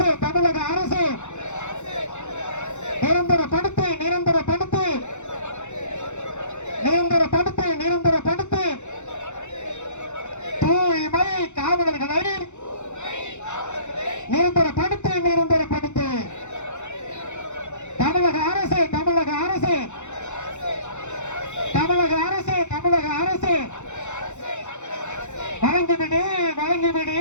தமிழக அரசு நிரந்தரப்படுத்து நிரந்தரப்படுத்து நிரந்தரப்படுத்து நிரந்தரப்படுத்து தூய்மை காவலர்களை நிரந்தரப்படுத்து நிரந்தரப்படுத்து. தமிழக அரசு தமிழக அரசு தமிழக அரசு தமிழக அரசு வழங்கிவிடு வழங்கிவிடு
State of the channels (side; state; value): right; late; 0.83 ms